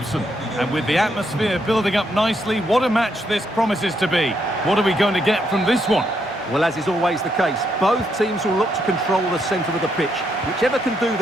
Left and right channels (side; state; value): both; normal; correlation 0.77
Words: And with the atmosphere building up nicely, what a match this promises to be. What are we going to get from this one? Well, as is always the case, both teams will look to control the centre of the pitch. Whichever can do